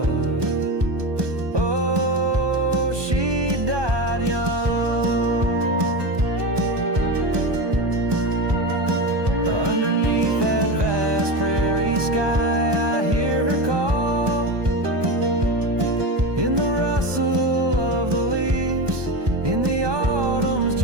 oh, she died young. Underneath that vast prairie sky, I hear her call, in the rustle of the leaves, in the autumn's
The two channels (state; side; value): late; left; 1.2 ms